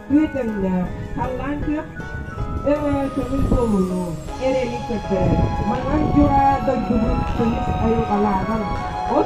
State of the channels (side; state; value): both; identical; correlation 1.00